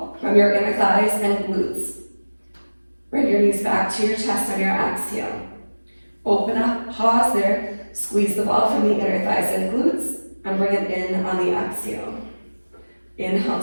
from your inner thighs and glutes. Bring your knees back to your chest on your exhale. Open up, pause there. Squeeze the ball from the inner thighs and glutes and bring it in on the exhale. Inhale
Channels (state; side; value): inverted; both; correlation -1.00